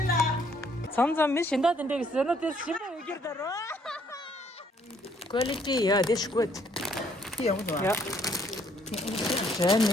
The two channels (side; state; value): both; normal; correlation 0.66